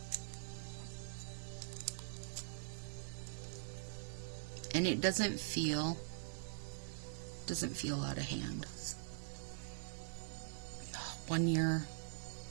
and it doesn't feel out of hand. One year,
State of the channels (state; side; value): silent; left; digital silence